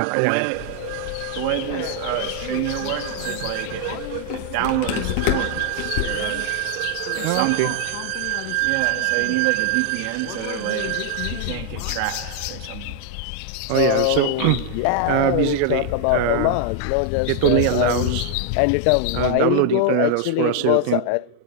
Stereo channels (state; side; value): different; both; correlation 0.00